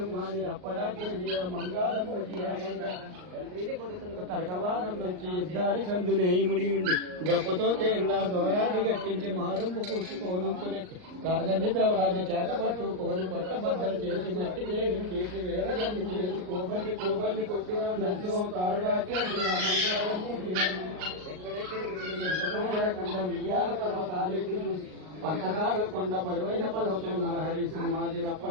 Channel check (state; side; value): late; left; 39 ms